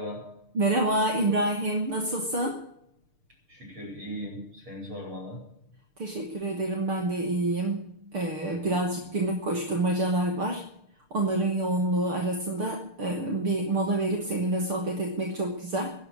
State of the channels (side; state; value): left; late; 6.6 ms